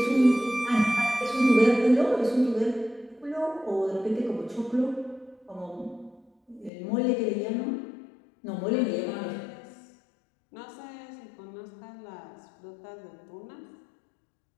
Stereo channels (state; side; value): drops out; right; at 6.7 s